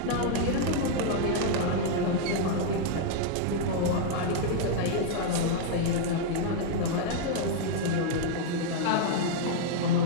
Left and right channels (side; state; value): both; different; correlation -0.01